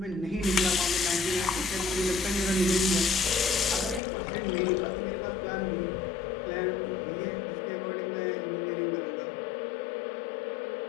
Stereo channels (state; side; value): drops out; right; at 4.0 s